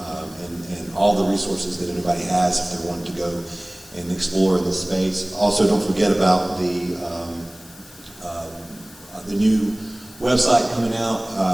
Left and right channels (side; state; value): left; noise; hiss, 21 dB below the sound